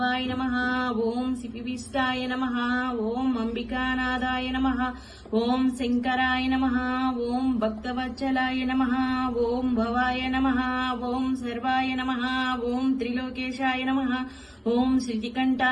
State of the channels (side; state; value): both; identical; correlation 1.00